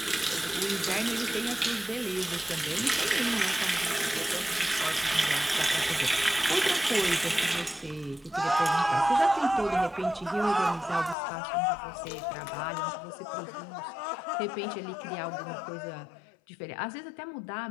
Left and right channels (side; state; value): right; drops out; at 11.2 s